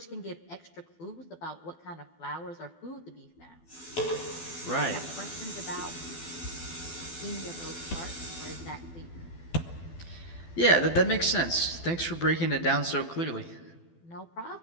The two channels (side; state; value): right; late; 12 ms